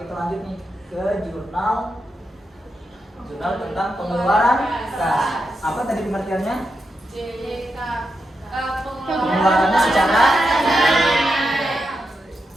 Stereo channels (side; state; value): both; normal; correlation 0.86